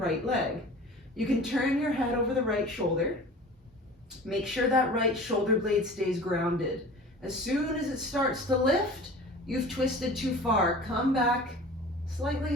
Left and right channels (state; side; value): normal; both; correlation 0.40